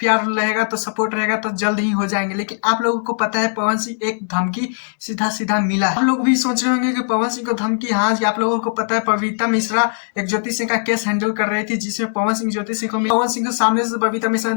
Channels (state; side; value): silent; right; 66 dB below the other